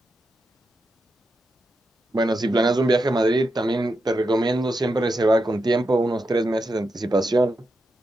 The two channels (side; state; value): both; normal; correlation 0.86